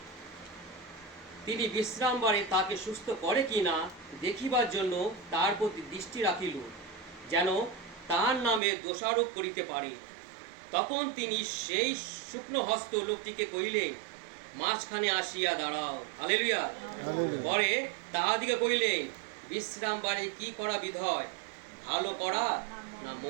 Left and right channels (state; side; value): drops out; left; at 8.6 s